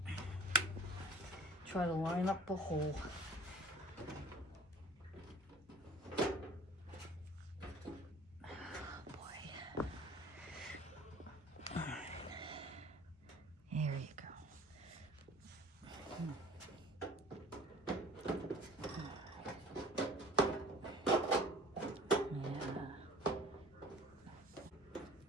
Try to line up the hole.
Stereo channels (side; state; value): both; normal; correlation 0.45